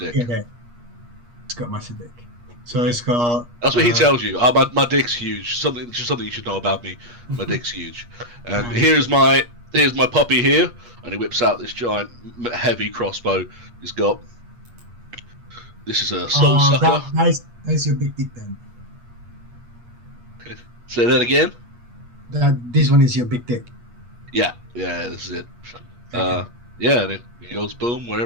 Yeah, it's got massive dick. So it's got... That's what he tells you. Oh, my dick's huge. Something you should know about me. My dick's huge. And here's my puppy here, and he whips out this giant, heavy crossbow. He's got... This is a soul sucker. That's your big dick then. Say that again? This one is your big dick. Yeah, this is it. Okay. Yeah, and it goes boom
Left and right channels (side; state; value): left; late; 8.4 ms